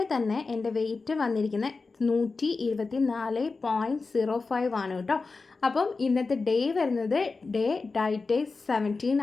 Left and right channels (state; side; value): quieter; right; 4.1 dB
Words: തന്നെ എൻ്റെ വെയിറ്റ് വന്നിരിക്കുന്നത് 124.05 ആണ് കേട്ടോ. അപ്പം ഇന്നത്തെ ഡേ വരുന്നത് ഡയറ്റ് 17